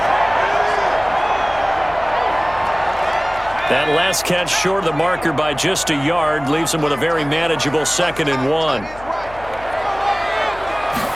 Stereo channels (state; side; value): noise; left; hum, 19 dB below the sound